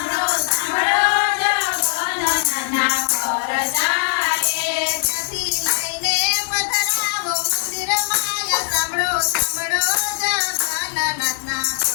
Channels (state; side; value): silent; right; 66 dB below the other